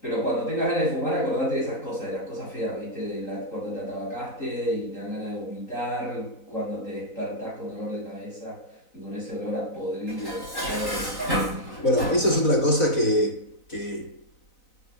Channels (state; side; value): late; right; 4.0 ms